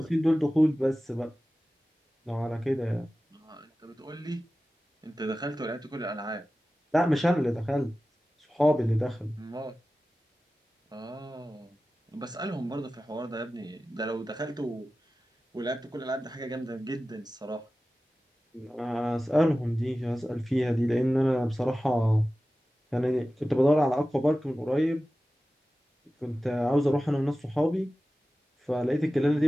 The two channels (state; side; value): normal; both; correlation 0.95